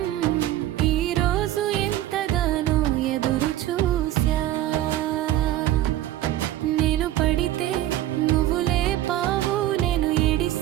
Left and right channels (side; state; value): left; quieter; 13.7 dB